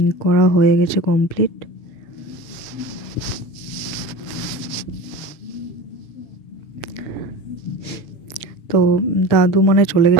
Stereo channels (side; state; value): right; late; 7.1 ms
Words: করা হয়ে গেছে কমপ্লিট। তো দাদু মানে চলে